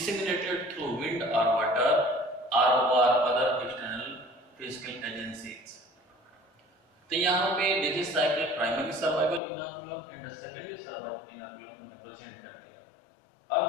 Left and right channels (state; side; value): drops out; right; at 9.4 s